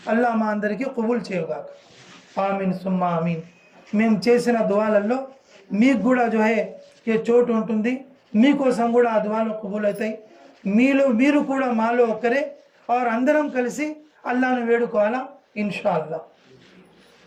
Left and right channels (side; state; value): both; identical; correlation 1.00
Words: అల్లా మా అందరికీ కబూల్ చేయగాక. ఆమీన్ సుమ్మా ఆమీన్. మేము చేసిన దువాలలో మీకు కూడా ఏ చోటు ఉంటుంది, మీకోసం కూడా ఆ దువాలు కబూల్ అవుతాయి. మీరు కూడా మాలో ఒకరే, అందరం కలిసి అల్లాను వేడుకోవాలా ఇన్షాల్లా.